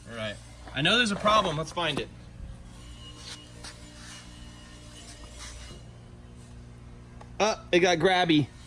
All right. I know there's a problem. Let's find it. It got grabby.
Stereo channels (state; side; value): identical; both; correlation 1.00